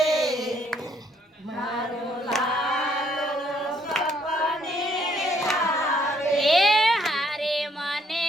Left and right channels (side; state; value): both; normal; correlation 0.67